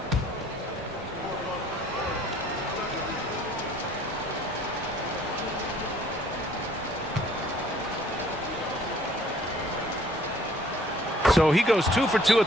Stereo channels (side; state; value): both; normal; correlation 0.57